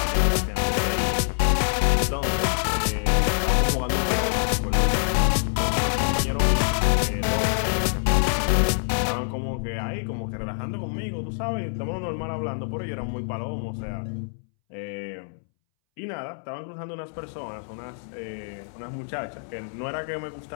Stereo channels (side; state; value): right; silent; 61 dB below the other